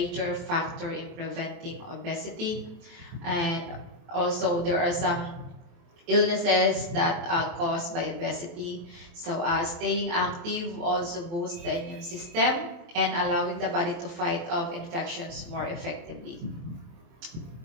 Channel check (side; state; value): left; late; 23 ms